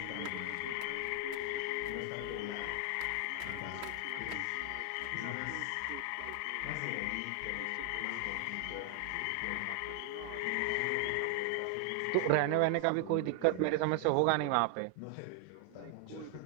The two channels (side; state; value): both; different; correlation 0.00